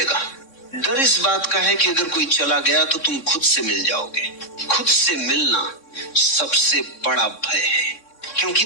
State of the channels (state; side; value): late; right; 3.6 ms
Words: डर इस बात का है कि अगर कोई चला गया तो तुम खुद से मिल जाओगे। खुद से मिलना सबसे बड़ा भय है, क्योंकि